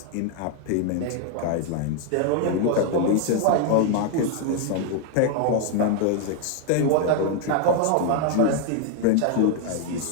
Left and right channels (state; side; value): different; both; correlation 0.00